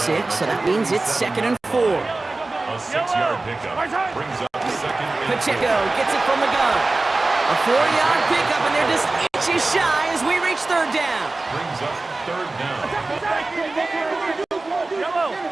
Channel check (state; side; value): quieter; left; 3.2 dB